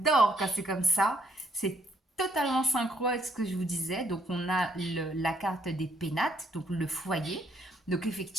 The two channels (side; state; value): both; normal; correlation 0.69